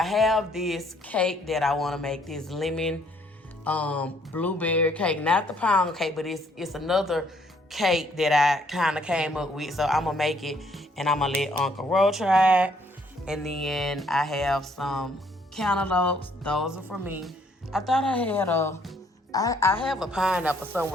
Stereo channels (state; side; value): normal; both; correlation 0.65